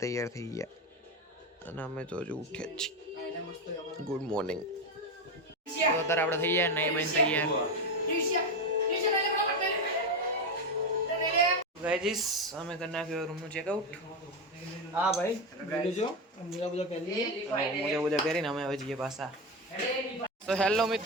તૈયાર થઈ ગયા અને અમે તો હજુ ઉઠ્યા જ છીએ. Good morning. તો અત્યારે આપણે થઈ ગયા નહીં બન તૈયાર. ગાઈસ અમે કરી નાખ્યો રૂમનું ચેકઆઉટ. હા ભાઈ લેજો મોજા મોજા પહેરીને અમે હવે જઈએ પાછા. તો હેલો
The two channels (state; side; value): normal; both; correlation 0.14